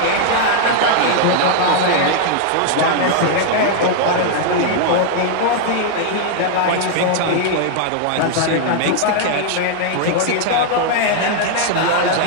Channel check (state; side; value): different; both; correlation 0.00